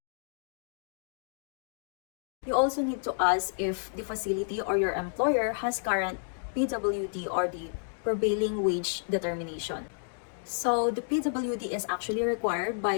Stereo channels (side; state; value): right; silent; digital silence